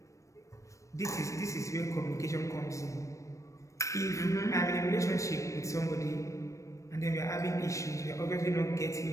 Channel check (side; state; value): right; late; 0.15 ms